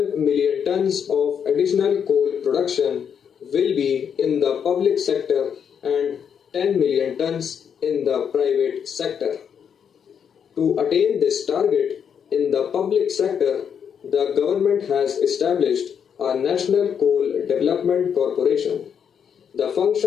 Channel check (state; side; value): quieter; right; 7.6 dB